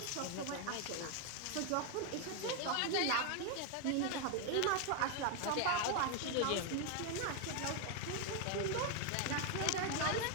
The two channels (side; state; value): both; different; correlation 0.01